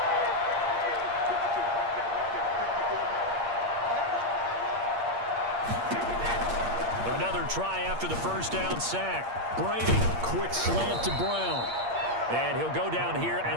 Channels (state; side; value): late; left; 8.6 ms